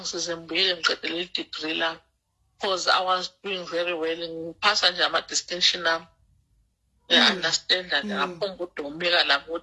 ngibuyele ngiqede le degree lami because I was doing very well ngiphasa nje ama-distinction ami. Understand that ngaphomba udomeka lami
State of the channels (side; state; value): both; identical; correlation 1.00